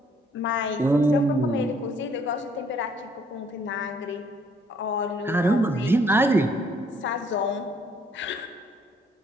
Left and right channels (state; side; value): normal; both; correlation 0.65